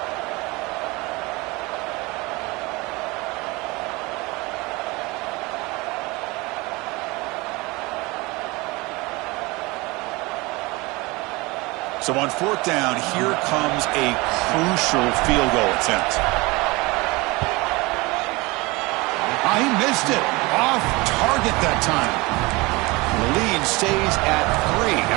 So on fourth down, here comes a crucial field goal attempt. He missed it. Off target that time. The lead stays at 3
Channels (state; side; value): quieter; left; 23.9 dB